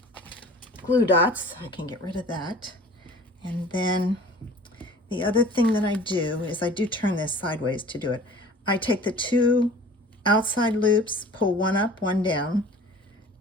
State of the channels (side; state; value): both; normal; correlation 0.45